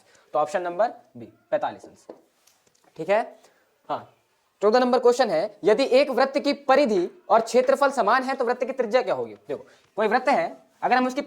तो ऑप्शन नंबर बी, 45 अंश। ठीक है, हाँ। 14 नंबर क्वेश्चन है, यदि एक वृत्त की परिधि और क्षेत्रफल समान है तो वृत्त की त्रिज्या क्या होगी? देखो कोई वृत्त है, अगर हम उसकी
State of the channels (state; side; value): identical; both; correlation 1.00